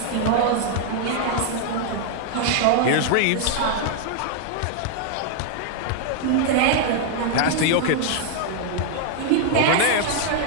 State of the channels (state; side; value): different; both; correlation 0.00